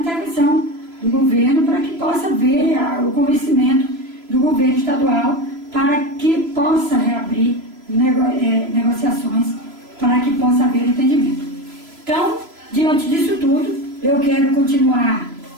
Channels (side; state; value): left; late; 3.0 ms